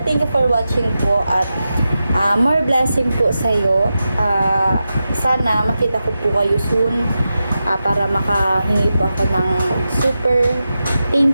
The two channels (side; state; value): both; inverted; correlation -0.91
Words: for watching po at more blessing po sa iyo. Sana makita ko po kayo soon para makahingi po ako ng super thank